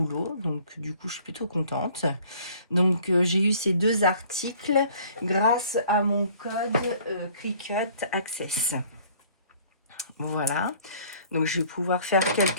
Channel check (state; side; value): inverted; both; correlation -0.55